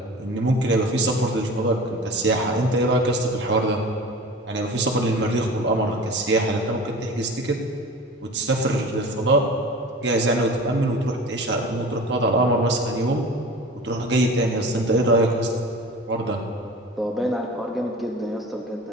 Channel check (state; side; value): normal; both; correlation 0.37